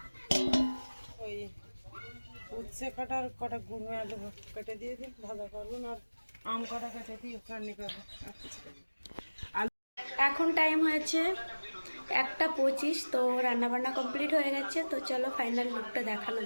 ওই উচ্ছে কাটার কটা গুঁড়ো আলু কেটে দিয়ে দিন, ভাজা করবেন। আর আম কটা কেটে দিয়ে চাটনি করবো। এখন টাইম হয়েছে 1:25। তো রান্নাবান্না কমপ্লিট হয়ে গেছে। তো চলো ফাইনাল লুকটা দেখানো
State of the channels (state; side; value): inverted; both; correlation -1.00